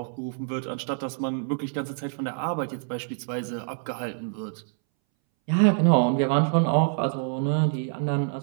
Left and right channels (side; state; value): left; silent; 61 dB below the other